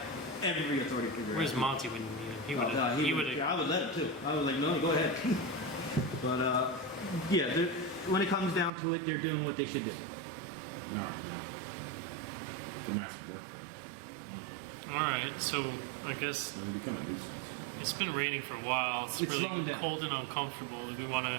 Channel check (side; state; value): left; drops out; at 8.7 s